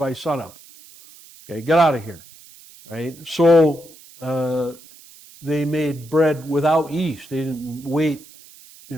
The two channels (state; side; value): noise; right; hiss, 22 dB below the sound